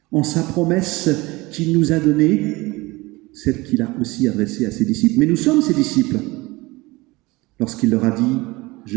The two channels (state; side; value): quieter; left; 22.0 dB